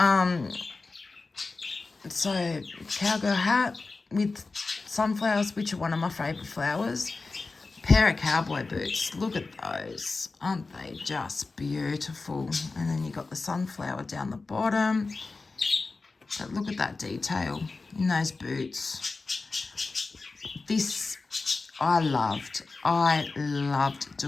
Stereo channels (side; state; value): right; quieter; 3.8 dB